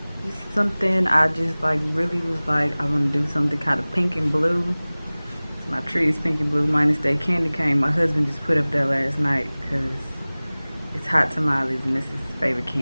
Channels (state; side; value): inverted; both; correlation -0.99